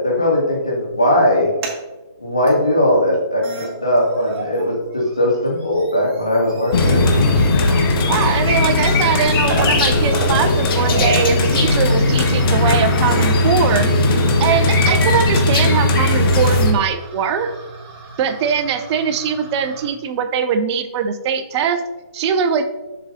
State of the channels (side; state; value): both; inverted; correlation -0.47